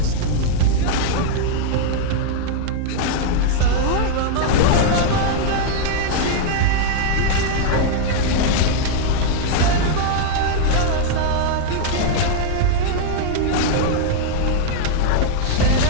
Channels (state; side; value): different; both; correlation -0.01